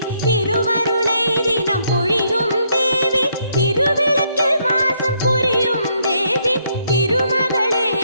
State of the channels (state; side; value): inverted; both; correlation -0.73